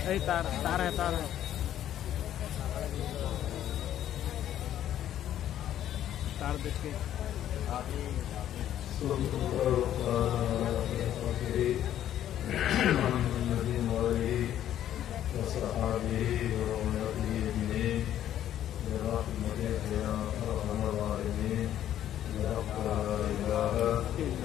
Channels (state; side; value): quieter; right; 11.4 dB